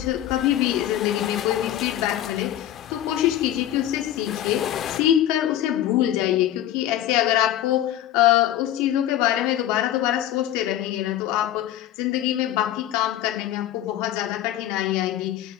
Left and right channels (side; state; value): right; quieter; 12.3 dB